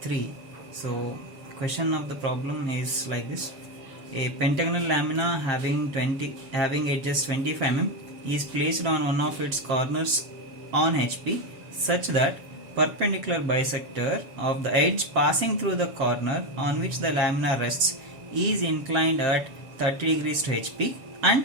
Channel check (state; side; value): late; left; 7.4 ms